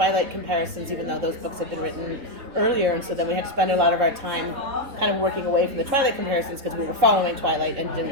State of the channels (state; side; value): late; left; 3.7 ms